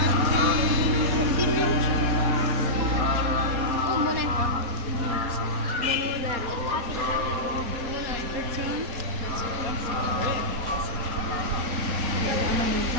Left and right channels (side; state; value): left; late; 3.9 ms